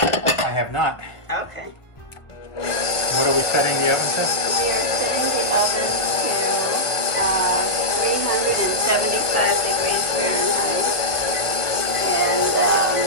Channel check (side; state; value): right; late; 1.4 ms